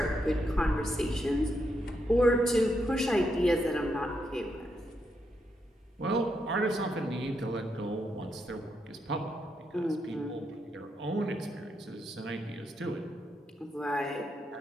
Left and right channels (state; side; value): normal; both; correlation 0.81